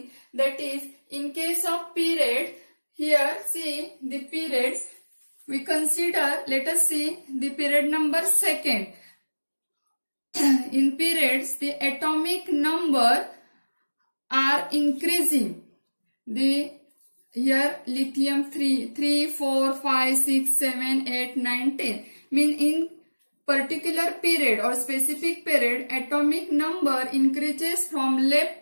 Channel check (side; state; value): both; inverted; correlation -1.00